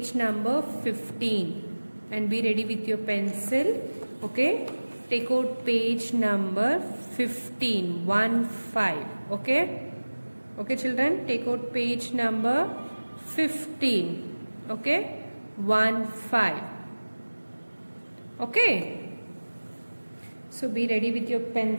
number 15 and be ready with your pencil. Okay, take out page number 15, 1-5. Okay children, take out page number 15. Okay, 1-5. Okay, so be ready with your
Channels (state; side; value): inverted; both; correlation -1.00